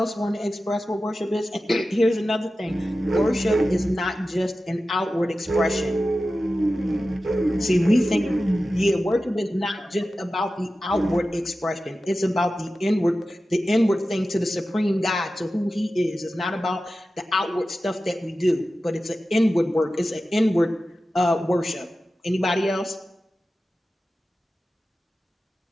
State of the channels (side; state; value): both; normal; correlation 0.94